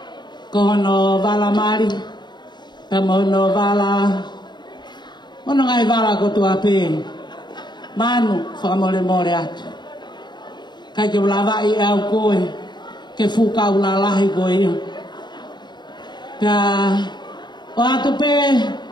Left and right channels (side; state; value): right; late; 0.21 ms